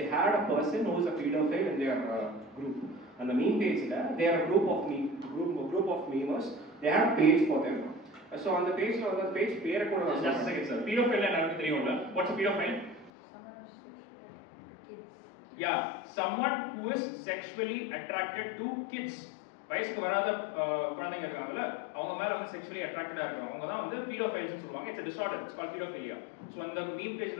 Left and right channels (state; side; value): drops out; right; at 13.1 s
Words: had a person who is a pedophile in their group. அந்த மீம் பேஜ்ல they are a group of memers. They have page for them. So on the page la the page பேரை கூட நான் just a second sir. Pedophile எனக்கு தெரியும்ல. What's a pedophile? Yeah, someone who is sexually attracted to kids. வயசுக்கு வராத குழந்தைங்க இருக்காங்கல்ல, அவங்க மேல வந்து செக்சுவலி அட்ராக்டடா இருக்காங்க, அவங்க தான் வந்து பீடோஃபைல்ஸ் சொல்லுவாங்க. It's a disorder, it's called pedophilia. So அந்த மீம்